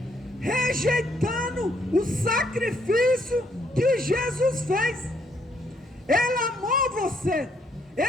rejeitando o sacrifício que Jesus fez. Ele amou você,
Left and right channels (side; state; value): both; normal; correlation 0.71